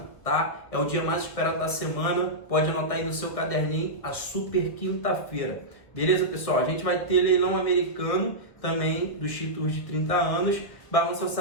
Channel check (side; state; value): right; late; 1.8 ms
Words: tá? É o dia mais esperado da semana. Pode anotar aí no seu caderninho, a super quinta-feira. Beleza, pessoal? A gente vai ter leilão americano também dos títulos de 30 anos, balança